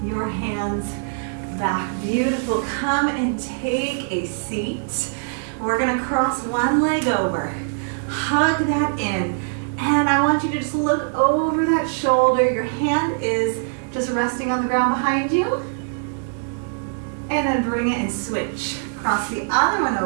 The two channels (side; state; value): left; silent; digital silence